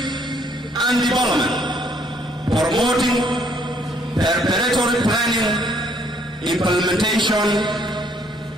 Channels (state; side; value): normal; both; correlation 0.66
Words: and development, promoting preparatory planning, implementation,